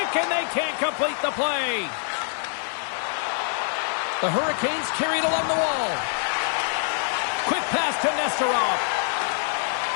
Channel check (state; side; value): silent; right; digital silence